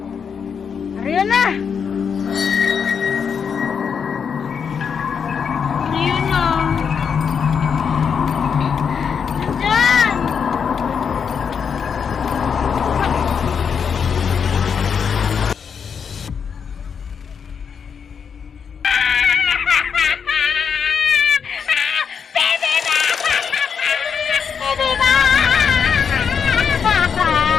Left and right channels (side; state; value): right; quieter; 6.7 dB